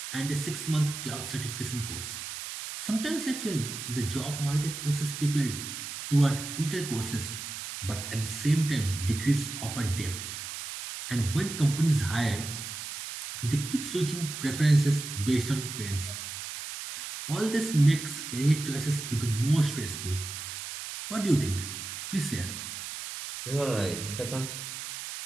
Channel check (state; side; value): noise; right; hiss, 7 dB below the sound